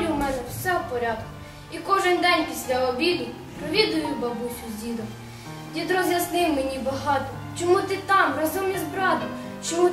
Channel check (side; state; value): both; identical; correlation 1.00